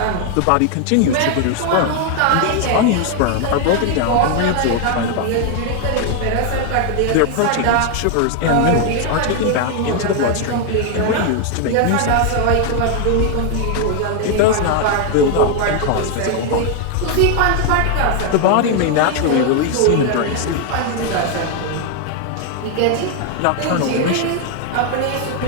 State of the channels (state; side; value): different; both; correlation 0.01